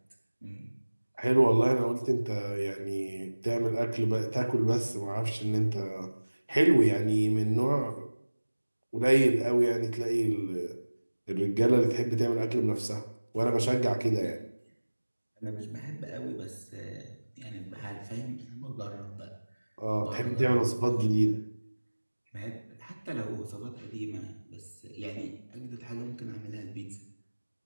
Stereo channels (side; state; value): both; inverted; correlation -1.00